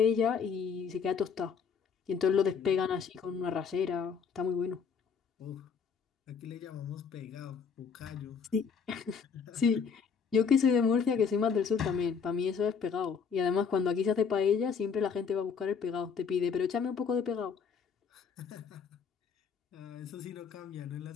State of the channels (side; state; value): right; quieter; 6.3 dB